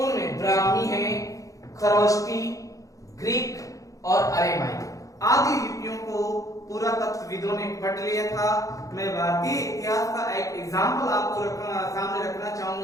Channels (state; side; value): late; right; 0.16 ms